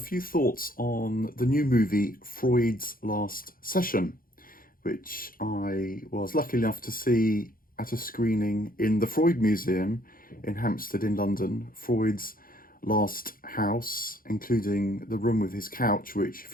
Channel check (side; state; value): right; late; 0.41 ms